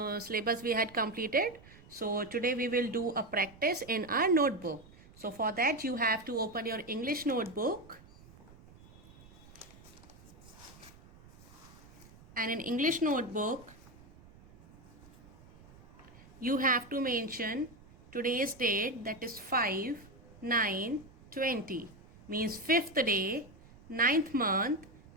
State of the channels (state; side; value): noise; right; rumble, 22 dB below the sound